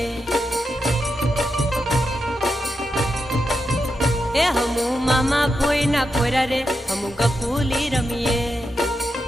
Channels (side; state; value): both; normal; correlation 0.87